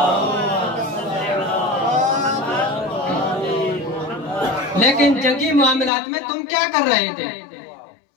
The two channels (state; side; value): drops out; right; at 5.9 s